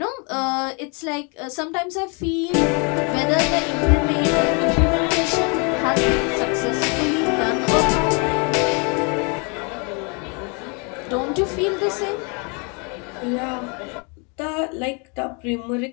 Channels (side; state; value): right; quieter; 34.0 dB